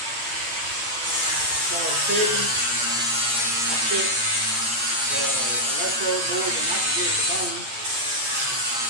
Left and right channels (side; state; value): left; late; 8.6 ms